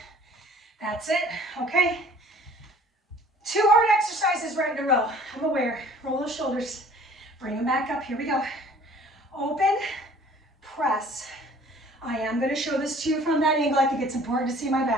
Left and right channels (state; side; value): normal; both; correlation 0.51